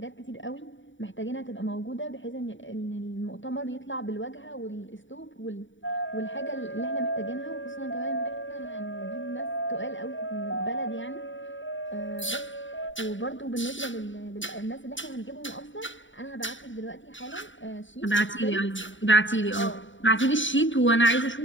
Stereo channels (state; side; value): late; right; 0.55 ms